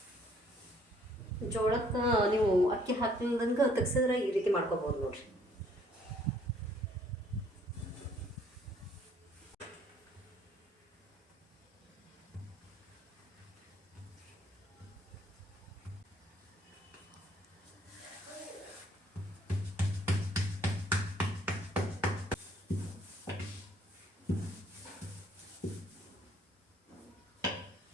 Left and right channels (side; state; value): both; normal; correlation 0.62